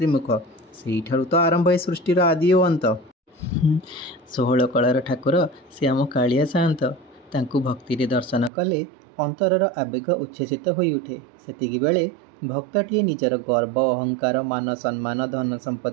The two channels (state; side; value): drops out; left; at 8.5 s